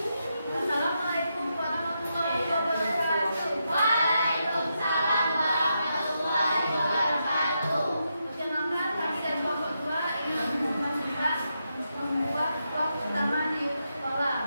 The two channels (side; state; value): both; inverted; correlation -0.84